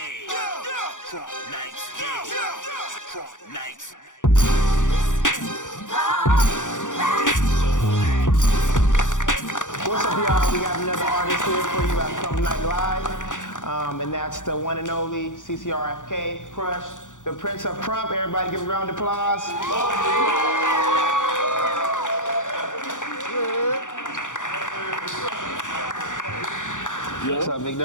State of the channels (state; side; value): late; right; 0.87 ms